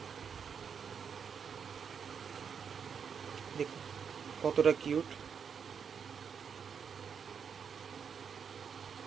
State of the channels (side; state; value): left; quieter; 6.9 dB